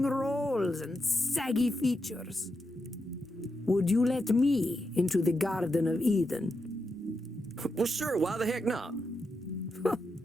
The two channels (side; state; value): both; normal; correlation 0.85